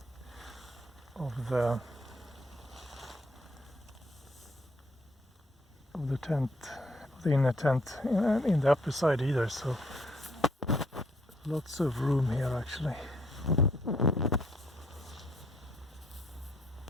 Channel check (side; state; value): both; normal; correlation 0.67